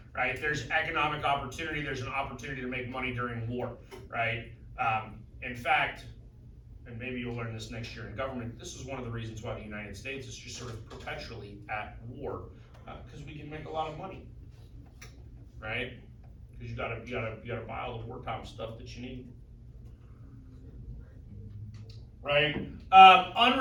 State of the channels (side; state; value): both; identical; correlation 1.00